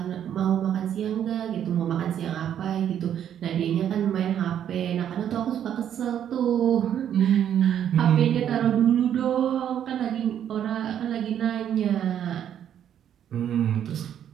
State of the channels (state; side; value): quieter; left; 9.8 dB